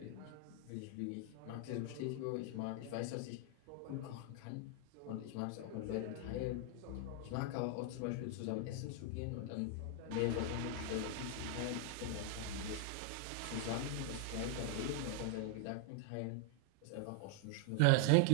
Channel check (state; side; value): different; both; correlation 0.00